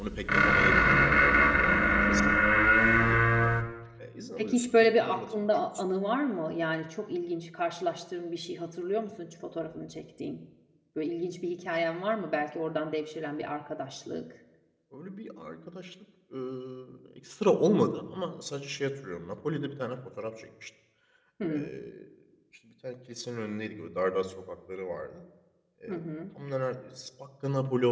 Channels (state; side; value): identical; both; correlation 1.00